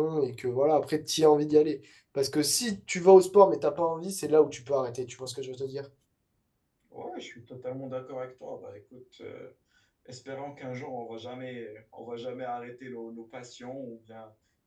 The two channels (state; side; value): identical; both; correlation 1.00